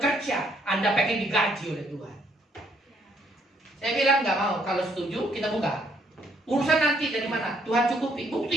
Anda pengen digaji oleh Tuhan. Saya bilang nggak mau. Kalau setuju kita buka. Urusan nanti dari mana? Tuhan cukupi.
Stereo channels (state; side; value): normal; both; correlation 0.69